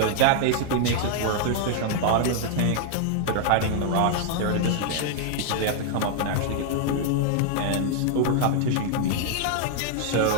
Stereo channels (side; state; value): both; different; correlation 0.00